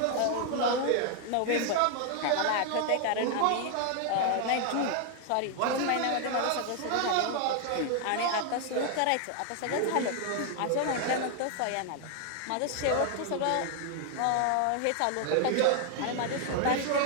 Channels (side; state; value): both; different; correlation 0.00